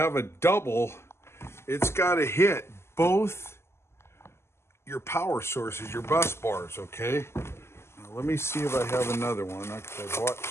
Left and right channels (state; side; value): late; right; 0.12 ms